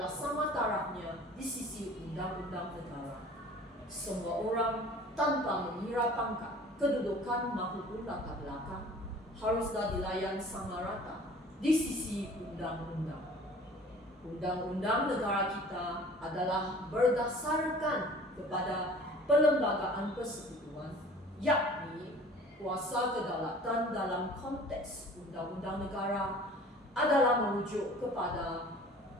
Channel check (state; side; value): normal; both; correlation 0.47